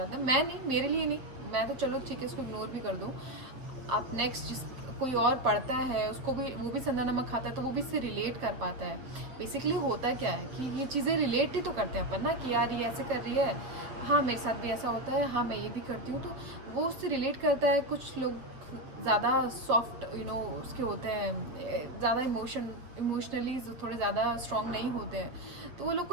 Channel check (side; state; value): left; late; 7.7 ms